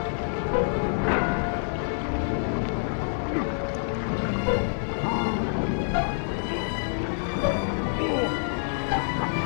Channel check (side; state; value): right; silent; digital silence